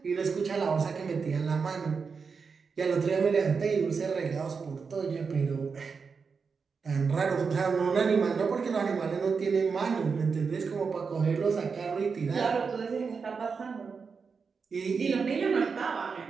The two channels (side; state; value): left; quieter; 5.3 dB